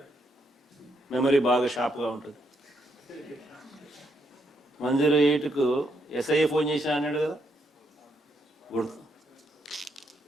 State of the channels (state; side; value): normal; both; correlation 0.77